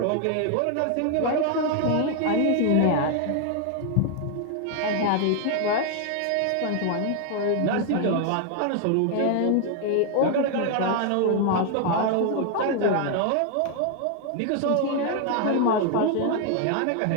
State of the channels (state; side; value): different; both; correlation 0.00